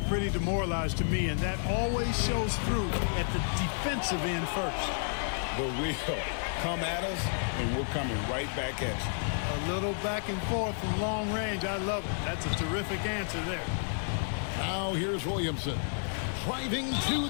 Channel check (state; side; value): silent; right; 57 dB below the other